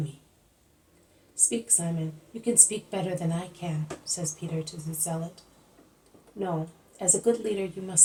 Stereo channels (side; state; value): both; identical; correlation 1.00